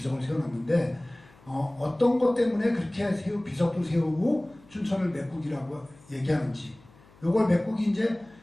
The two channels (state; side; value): noise; left; hum, 26 dB below the sound